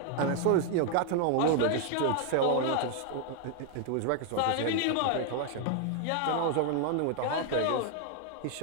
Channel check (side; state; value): both; different; correlation 0.00